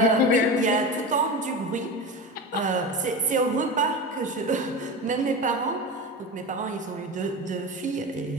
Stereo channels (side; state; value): both; normal; correlation 0.25